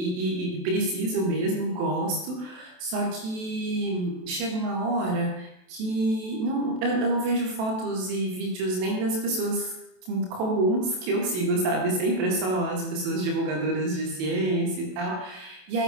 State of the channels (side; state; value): left; late; 27 ms